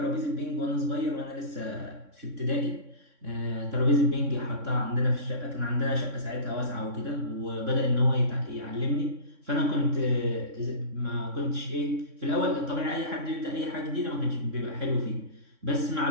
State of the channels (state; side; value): late; left; 3.6 ms